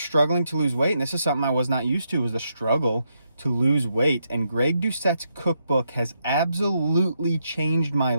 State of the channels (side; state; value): both; inverted; correlation -0.80